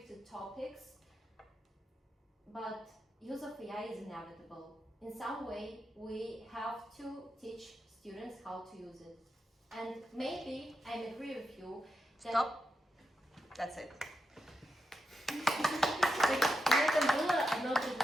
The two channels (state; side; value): normal; both; correlation 0.87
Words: topics, but use of AI is inevitable. In some way, we have to teach students how to use it. And maybe I agree with you that... Stop. That's it. На этом было одно